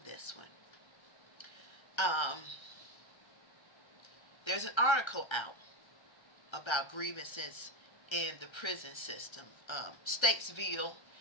this one. There's an article out about grievances in the prison system, Statesville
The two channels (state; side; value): late; right; 1.3 ms